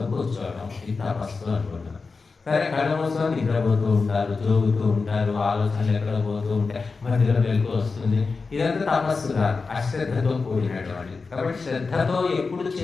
కూర్చోవడం, ఇది తపస్సు అనుకుంటున్నాం. సరే, కళ్ళు మూసుకొని నిద్రపోతూ ఉంటారు, జోగుతూ ఉంటారు, ఆలోచనలు ఎక్కడ పోతూ ఉంటాయి, మధ్యలో వెలుగు వస్తుంది. ఇదంతా తపస్సు కాదు, అశ్రద్ధతో కూడినటువంటి. కాబట్టి శ్రద్ధతో ఎప్పుడు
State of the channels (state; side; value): quieter; right; 4.4 dB